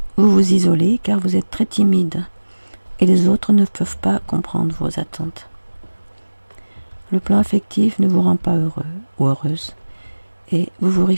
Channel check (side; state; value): both; inverted; correlation -1.00